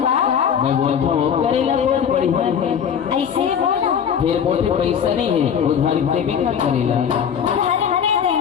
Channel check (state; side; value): quieter; right; 7.9 dB